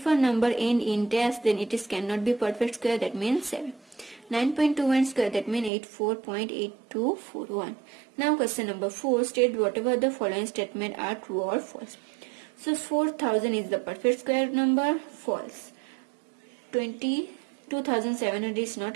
a number end in dash, then it is cannot be perfect square, that means 7. 9.21 square, that means 84.8241. Now question number 4. State whatever the following statement are true or false. So 4000 is the perfect square number, false. 22,700 is not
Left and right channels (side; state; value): left; drops out; at 5.7 s